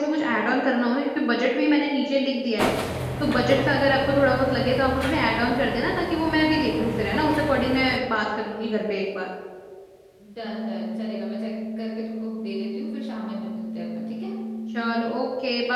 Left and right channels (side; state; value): both; identical; correlation 1.00